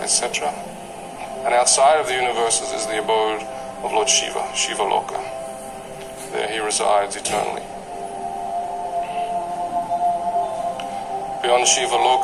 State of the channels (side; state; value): both; identical; correlation 1.00